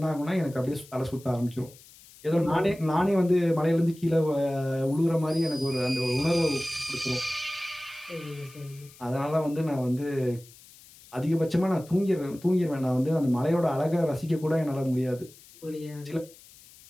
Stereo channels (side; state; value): left; noise; hiss, 23 dB below the sound